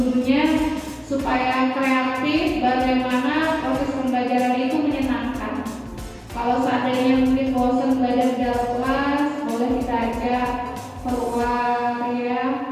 supaya kreatif bagaimana proses pembelajaran itu menyenangkan. Kalau seandainya mungkin bosan belajar di dalam kelas, boleh kita ajak keluar ya,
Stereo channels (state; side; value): identical; both; correlation 1.00